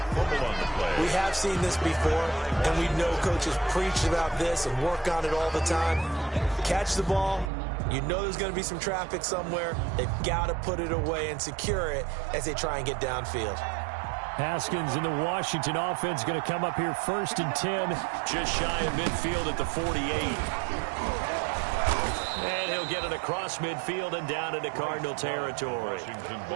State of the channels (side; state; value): left; drops out; at 7.5 s